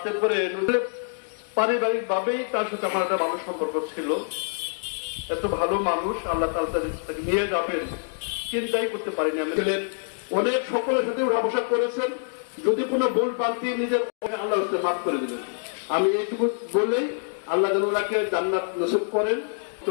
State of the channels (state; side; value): silent; right; digital silence